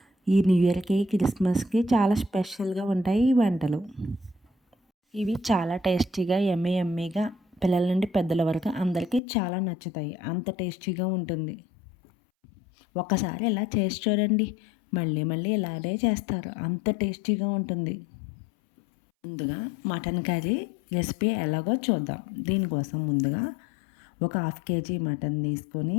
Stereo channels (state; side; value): drops out; right; at 9.2 s